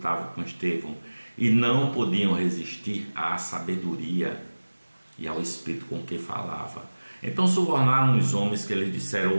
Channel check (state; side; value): inverted; both; correlation -1.00